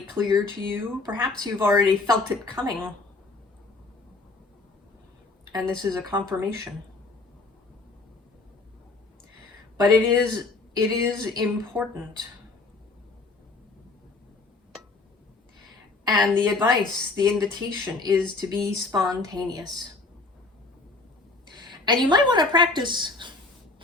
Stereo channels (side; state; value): right; quieter; 3.6 dB